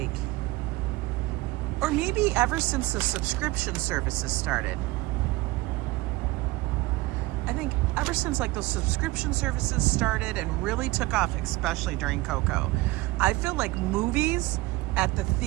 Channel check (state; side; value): quieter; left; 20.1 dB